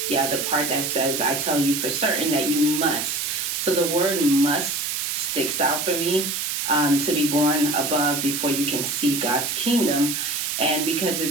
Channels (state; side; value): noise; right; hiss, 2 dB below the sound